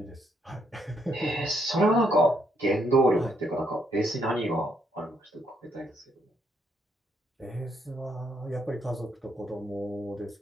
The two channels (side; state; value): both; normal; correlation 0.74